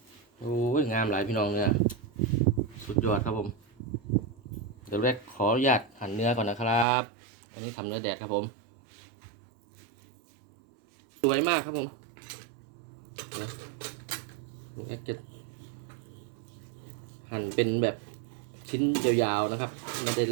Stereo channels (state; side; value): drops out; left; at 6.9 s